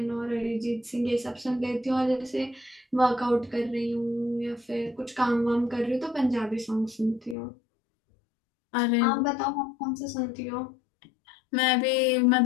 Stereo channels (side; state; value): right; drops out; at 7.4 s